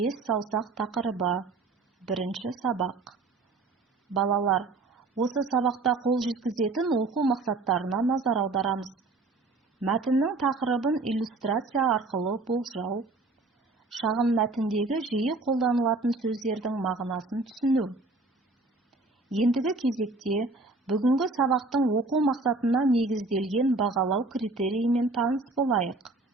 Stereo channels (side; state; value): left; quieter; 3.5 dB